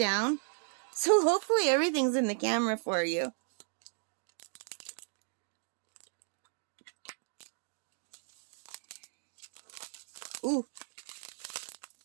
So hopefully everything's in the camera for you. Ooh,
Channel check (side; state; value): left; silent; 54 dB below the other